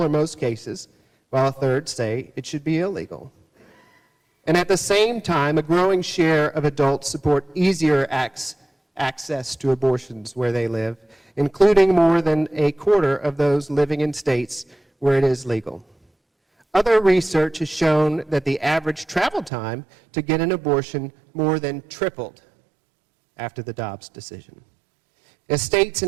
or most cases, while a third say it should be illegal. And at the same time, a growing share of adults support easier access to abortions where they live, including more than a quarter of those living in states where it is legal. Other research has shown that the average travel time to get an abortion more than tripled after the Dobbs decision. As states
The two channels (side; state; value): left; drops out; at 19.5 s